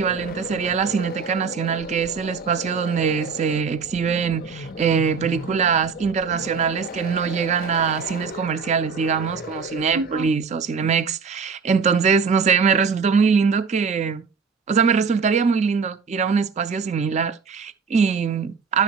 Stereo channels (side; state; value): left; quieter; 5.5 dB